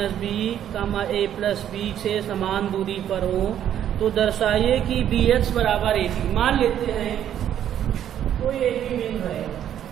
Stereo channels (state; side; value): quieter; left; 10.4 dB